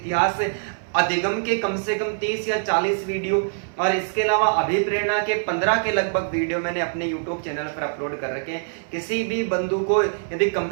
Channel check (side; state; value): left; silent; 58 dB below the other